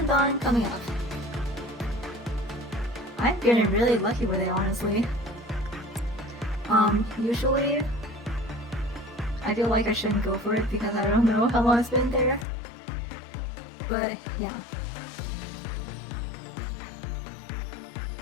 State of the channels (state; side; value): drops out; right; at 12.5 s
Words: Dawn coming up. I'm feeling really lucky with it, honestly. Usually I feel like I shouldn't go for it because I don't know how long it's been there. But yeah.